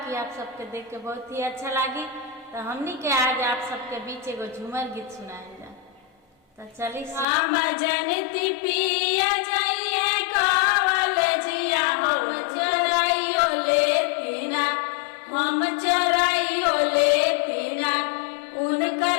आप सबके देख के बहुत ही अच्छा लगी। तो हमनी के आज आप सबके बीच एगो झूमर गीत सुनाए जा। तो चली हम जनती पिया जइए कॉलेजिया हम चोराइयो लेतिना हम चोराइयो लेतिना उनकर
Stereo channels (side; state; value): right; drops out; at 7.2 s